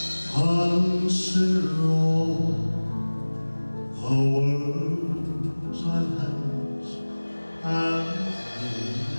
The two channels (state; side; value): inverted; both; correlation -1.00